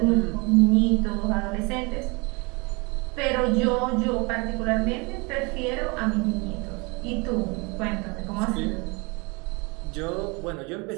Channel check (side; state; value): left; quieter; 28.6 dB